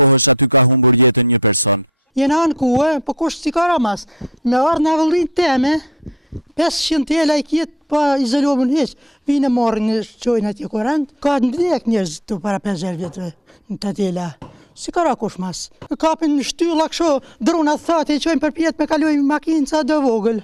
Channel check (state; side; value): normal; both; correlation 0.53